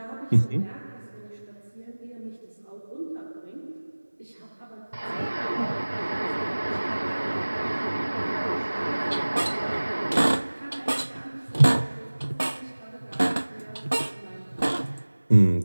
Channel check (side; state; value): both; inverted; correlation -1.00